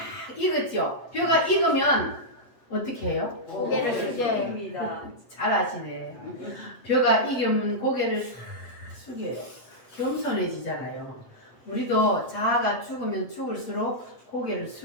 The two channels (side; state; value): right; late; 8.0 ms